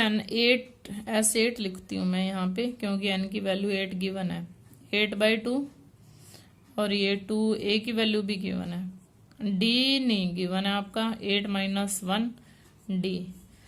लिखती हूँ मैं यहाँ पे, क्योंकि n की वैल्यू 8 गिवन है, 8 बाई 2, और ये 2 a की वैल्यू भी गिवन है, d नहीं गिवन है आपका, 8 माइनस 1 d,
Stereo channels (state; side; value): identical; both; correlation 1.00